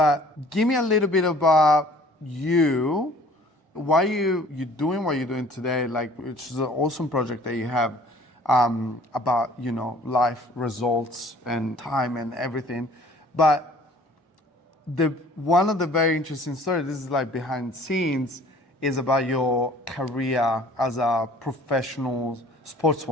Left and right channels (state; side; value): normal; both; correlation 0.52